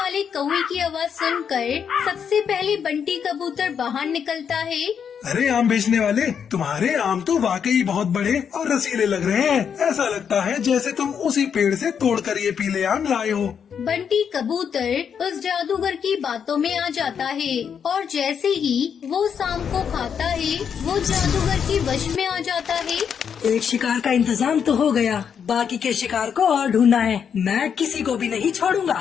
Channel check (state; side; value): quieter; right; 7.5 dB